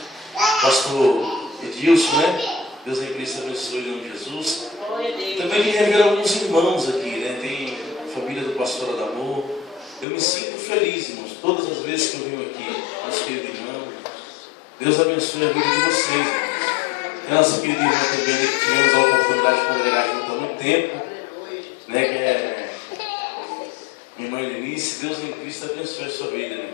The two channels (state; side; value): drops out; right; at 10.1 s